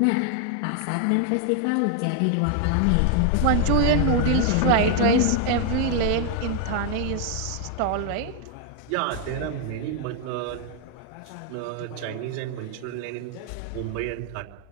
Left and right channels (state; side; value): different; both; correlation 0.00